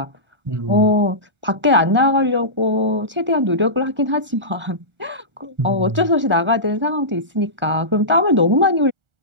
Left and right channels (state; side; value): late; left; 1.4 ms